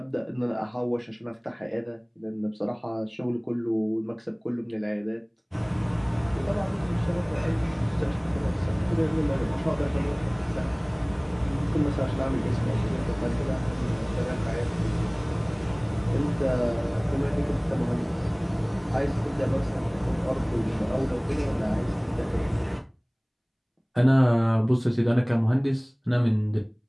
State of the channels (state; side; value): identical; both; correlation 1.00